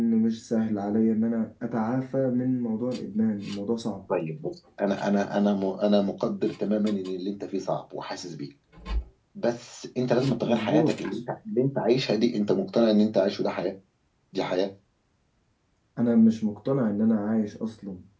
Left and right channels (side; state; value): both; identical; correlation 1.00